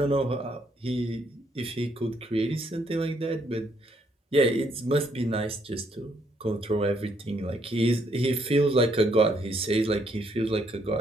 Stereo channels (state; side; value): normal; both; correlation 0.71